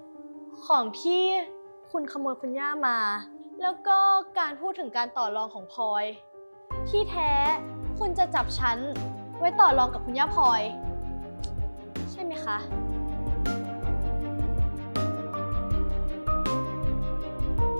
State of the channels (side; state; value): both; inverted; correlation -1.00